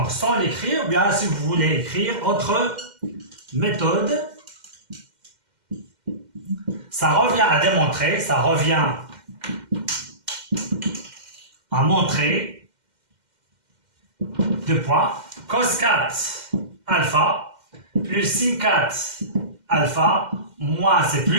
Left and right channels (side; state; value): left; late; 2.1 ms